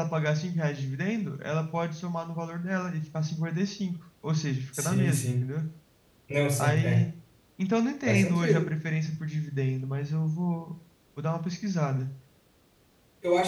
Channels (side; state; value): both; identical; correlation 1.00